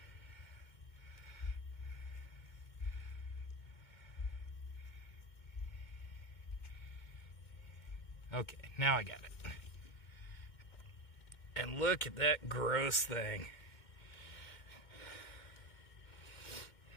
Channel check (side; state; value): right; late; 2.2 ms